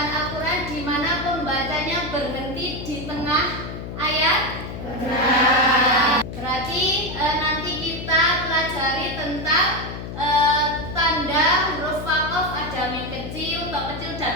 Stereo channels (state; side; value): noise; left; hum, 8 dB below the sound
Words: bacaan Al-Quran di mana pembacanya berhenti di tengah ayat? Benar. Berarti nanti kita pelajari tentang tanda huruf waqaf, ada mim kecil, to kecil